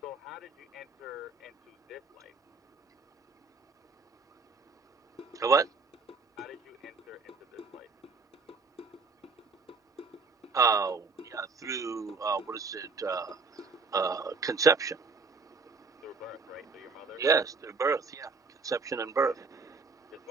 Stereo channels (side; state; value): left; quieter; 4.5 dB